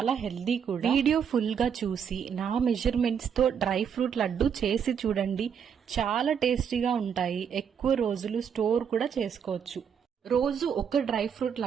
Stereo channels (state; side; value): quieter; left; 7.6 dB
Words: హెల్దీ కూడా. వీడియో ఫుల్ గా చూసి నా మెజర్మెంట్స్ తో డ్రై ఫ్రూట్ లడ్డు చేసి చూడండి. చాలా టేస్టీగా ఉంటాయి, ఎక్కువ రోజులు స్టోర్ కూడా చేసుకోవచ్చు. రోజు ఒక డ్రై ఫ్రూట్